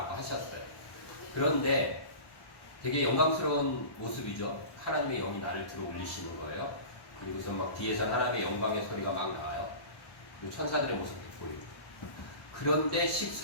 하셨어요. 그런데 되게 영광스러운 모습이죠. 하나님의 영이 나를 들어 올리시는 거예요. 그리고서 막 뒤에서 하나님의 영광의 소리가 막 나와요. 그리고 천사들의 모습도 보이고. 그런데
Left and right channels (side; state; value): right; late; 1.1 ms